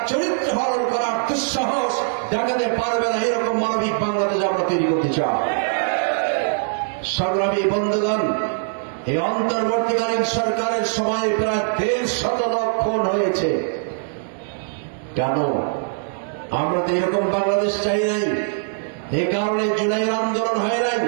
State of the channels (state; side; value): silent; left; digital silence